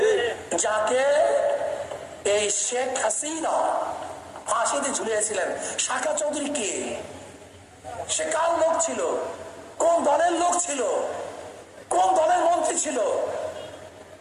যাকে এই শেখ হাসিনা ফাঁসিতে ঝুলিয়েছিলেন, শাখা চৌধুরী কে? সে কার লোক ছিল? কোন দলের লোক ছিল? কোন দলের মন্ত্রী ছিল?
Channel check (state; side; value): identical; both; correlation 1.00